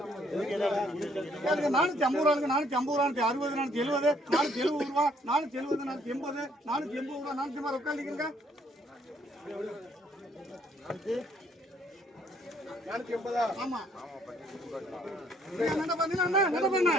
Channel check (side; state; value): both; normal; correlation 0.66